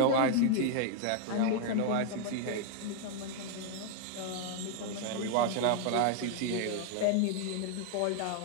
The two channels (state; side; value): different; both; correlation 0.00